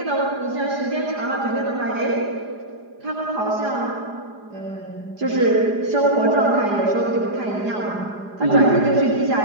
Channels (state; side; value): late; left; 4.9 ms